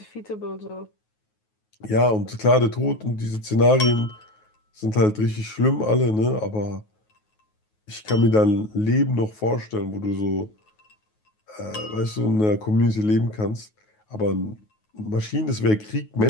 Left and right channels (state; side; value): late; right; 9.4 ms